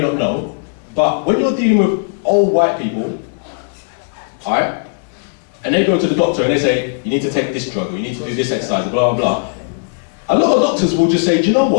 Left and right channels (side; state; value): right; silent; digital silence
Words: know, but when you're dealing with old white people, alright, and they go to the doctor and they say, you need to take this drug, or you need to do this exercise, blah, blah, blah. A lot of doctors will just say, do you know